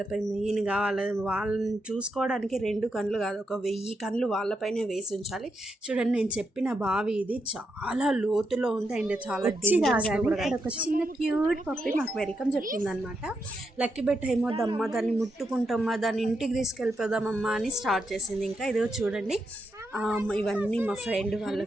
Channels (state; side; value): normal; both; correlation 0.83